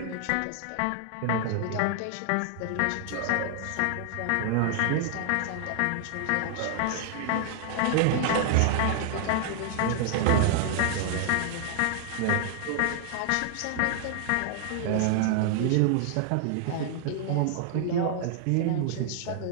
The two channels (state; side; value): different; both; correlation 0.00